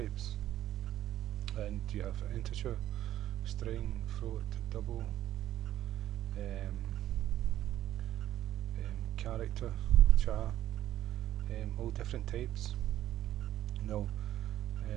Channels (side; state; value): left; quieter; 12.8 dB